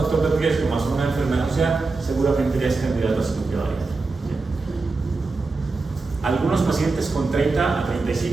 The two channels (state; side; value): quieter; left; 3.8 dB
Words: de riesgo más una enfermedad ósea, seguramente ya es candidato a cirugía bariátrica. Algunos pacientes con 30 a